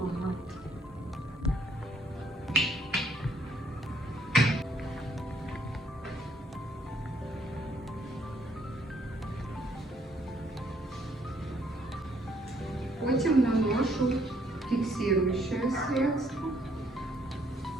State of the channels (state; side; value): normal; both; correlation 0.68